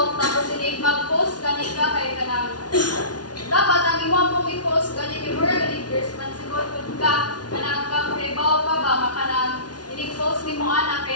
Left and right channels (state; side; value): late; right; 0.69 ms